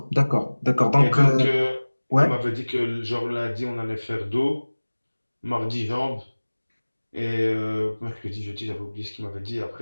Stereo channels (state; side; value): inverted; both; correlation -1.00